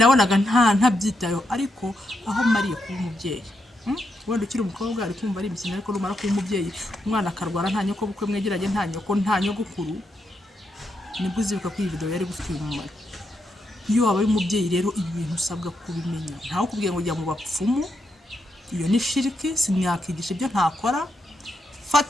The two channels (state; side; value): normal; both; correlation 0.82